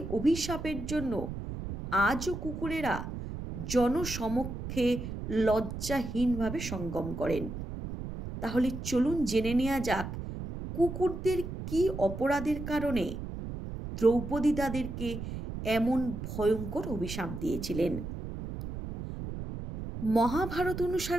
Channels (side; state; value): right; noise; rumble, 7 dB below the sound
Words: অভিশাপের জন্য আজও কুকুরেরা জনসমক্ষে লজ্জাহীনভাবে সঙ্গম করেন। তাহলে চলুন জেনে নেওয়া যাক কুকুরদের কী অপরাধের কারণে দ্রৌপদী তাদেরকে এমন ভয়ঙ্কর অভিশাপ দিয়েছিলেন। মহাভারত